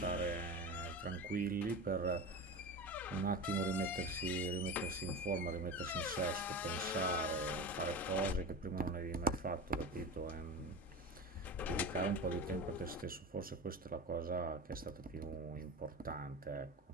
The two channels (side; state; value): both; normal; correlation 0.27